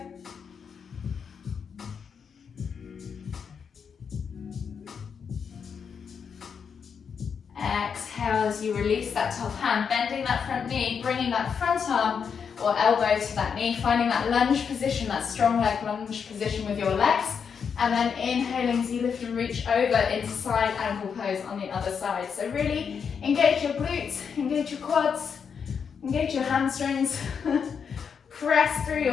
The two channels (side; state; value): right; quieter; 6.6 dB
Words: Exhale as you release that top hand, bending that front knee, bringing that front arm or elbow to that knee, finding that lunge position, that strong leg lunge position with your legs, and then inhaling as you lift and reach over into side ankle pose on the other side. So really engage your glutes, engage your quads, engage your hamstrings, press through